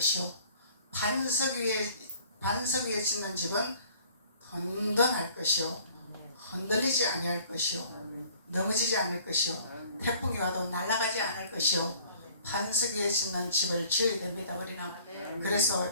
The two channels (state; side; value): inverted; both; correlation -0.54